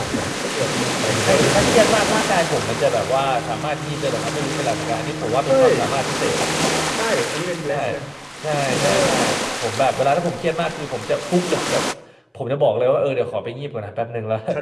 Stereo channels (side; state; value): both; identical; correlation 1.00